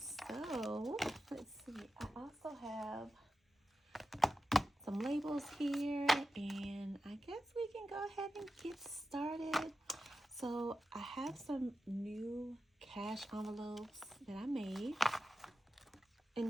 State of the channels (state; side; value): normal; both; correlation 0.92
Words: So let's see. I also have some labels here, and I guess we can go ahead and get started. So I have some new cash envelopes that I made. And